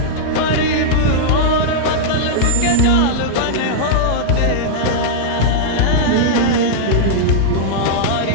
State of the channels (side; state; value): both; different; correlation -0.02